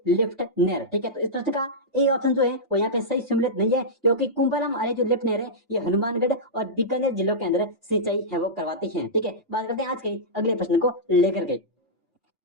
लिफ्ट नहर, ठीक है। तो इस प्रश्न का ए ऑप्शन जो है वो यहाँ पे सही सम्मिलित नहीं है, क्योंकि कुंभाराम आर्य जो लिफ्ट नहर है ये हनुमानगढ़ और बीकानेर जिलों के अंदर सिंचाई है वो करवाती है, ठीक है। बात करते हैं आज के अगले प्रश्न को लेकर के।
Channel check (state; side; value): normal; both; correlation -0.12